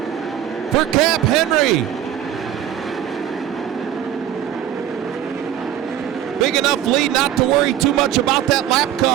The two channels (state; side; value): quieter; left; 10.9 dB